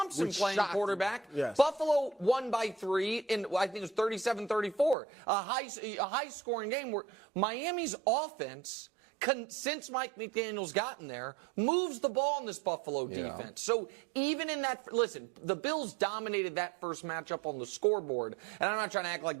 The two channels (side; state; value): left; drops out; at 5.0 s